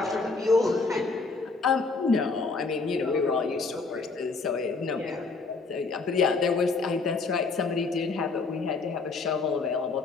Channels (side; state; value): right; quieter; 4.1 dB